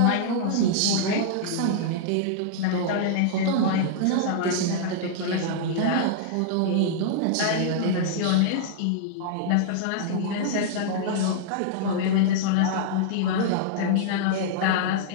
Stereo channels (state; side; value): different; both; correlation -0.01